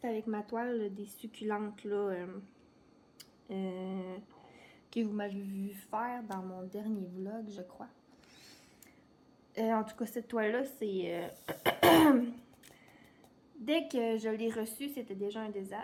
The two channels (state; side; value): identical; both; correlation 1.00